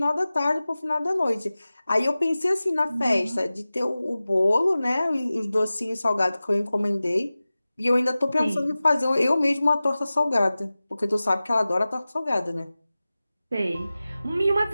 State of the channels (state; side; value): inverted; both; correlation -0.97